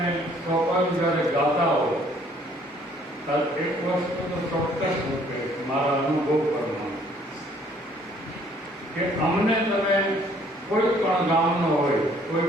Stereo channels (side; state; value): both; normal; correlation 0.61